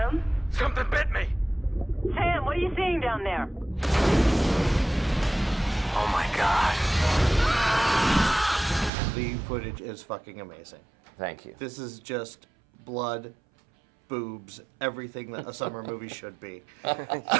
Something bit me! Sam, what are you seeing down there? Oh my god. The footage is fucking amazing. Thank you. This is just blood, boobs, everything that a summer movie should be.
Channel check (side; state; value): left; drops out; at 8.9 s